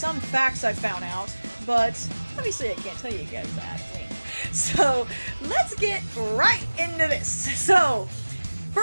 facts I found out, but obviously I can't tell you guys that. Wink. So, let's get right into this. So,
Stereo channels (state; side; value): inverted; both; correlation -1.00